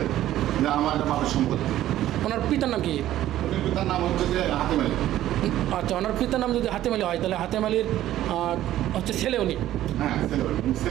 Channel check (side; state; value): left; quieter; 13.3 dB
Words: যে আমার একটা বাপের সম্পত্তি। ওনার পিতার নাম কি? উনি পিতার নাম হচ্ছে যে হাতেম আলী। আচ্ছা, ওনার পিতার নাম যদি হাতেম আলী হয় তাহলে হাতেম আলীর হচ্ছে ছেলে উনি? হ্যাঁ,